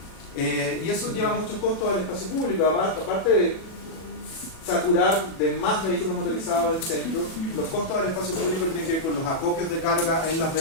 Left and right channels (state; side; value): late; right; 37 ms